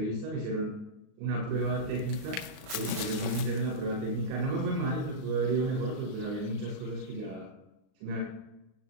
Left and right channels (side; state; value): left; late; 38 ms